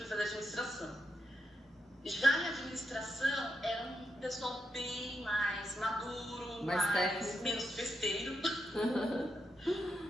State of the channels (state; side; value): normal; both; correlation 0.83